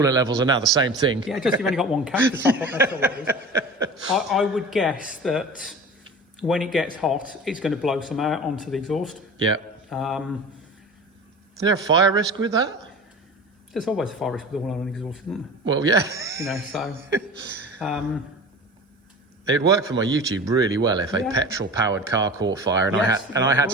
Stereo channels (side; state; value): both; normal; correlation 0.36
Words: levels are now the same thing. Yeah, just you've only got one cap to top up, that's all it is. I would guess that when it gets hot, it's going to blow some out onto the exhaust. Yeah. Is there a fire risk with that? There's always a fire risk with oil on an exhaust, isn't there? Well, yeah. You know, so... It'd work for my YouTube really well if a Yeah. petrol-powered car caught fire and Yes, I had